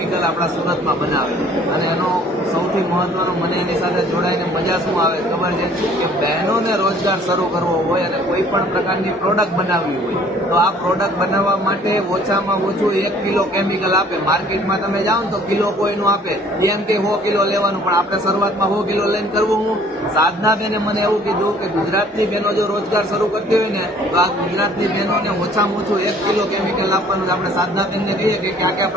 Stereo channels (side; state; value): both; normal; correlation 0.56